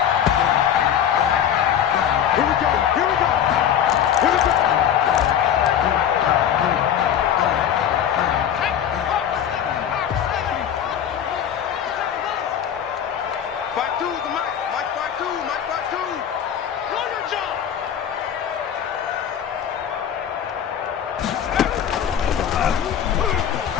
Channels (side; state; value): right; quieter; 9.3 dB